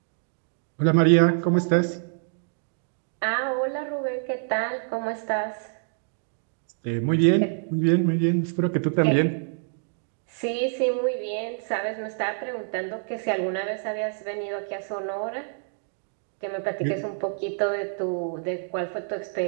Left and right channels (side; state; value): left; silent; digital silence